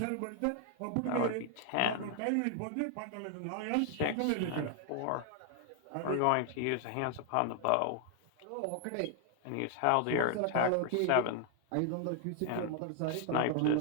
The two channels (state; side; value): different; both; correlation 0.00